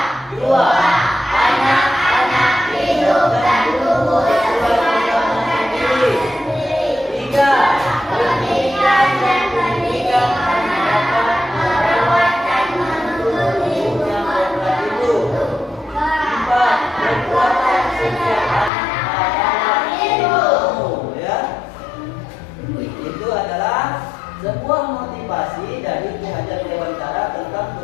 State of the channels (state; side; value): drops out; right; at 18.7 s